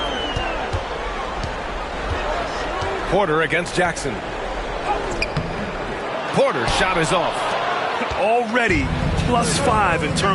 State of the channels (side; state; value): both; identical; correlation 1.00